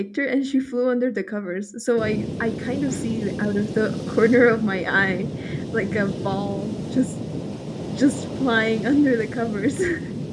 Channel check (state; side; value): identical; both; correlation 1.00